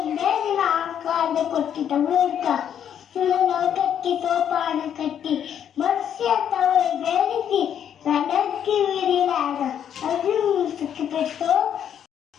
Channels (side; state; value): right; quieter; 9.2 dB